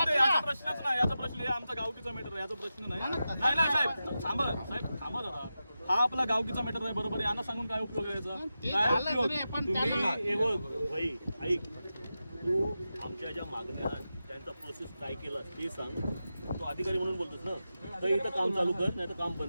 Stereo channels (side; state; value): both; inverted; correlation -0.91